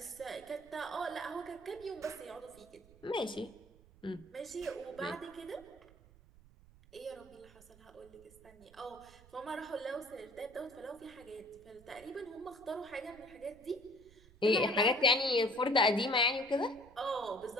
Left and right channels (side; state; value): right; noise; rumble, 24 dB below the sound